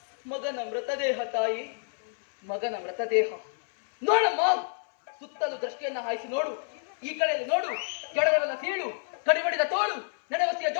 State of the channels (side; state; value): right; silent; 59 dB below the other